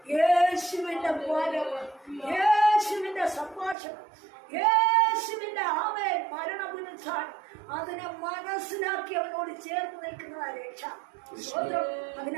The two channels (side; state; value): left; drops out; at 3.8 s